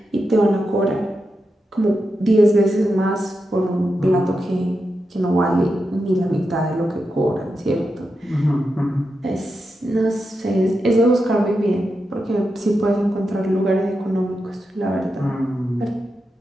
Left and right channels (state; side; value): normal; both; correlation 0.88